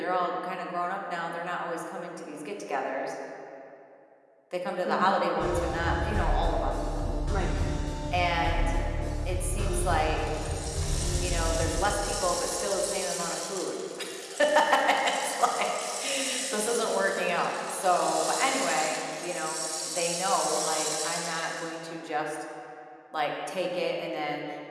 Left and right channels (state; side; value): identical; both; correlation 1.00